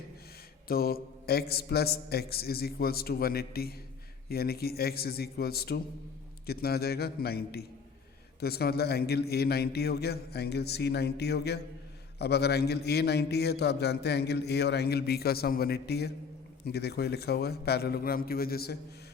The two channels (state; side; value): quieter; right; 5.7 dB